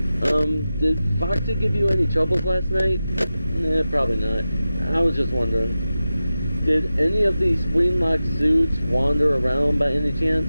Did Foxy give you any troubles last night? Nah, probably not. I was just wondering. Did any of these spring-locked suits wander around by any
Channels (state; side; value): inverted; both; correlation -0.93